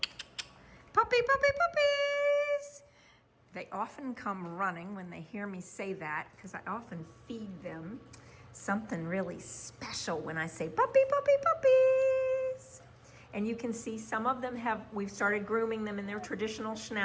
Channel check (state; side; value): identical; both; correlation 1.00